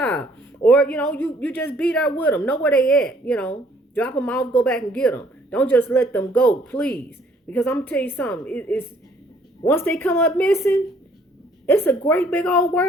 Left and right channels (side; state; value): both; normal; correlation 0.62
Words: Or, you know, you just be there with them. Know where they at, you know. Drop them off, go back and get them. Don't just let them go, please. Because I'm going to tell you something. It's once they come up missing, it's a great big old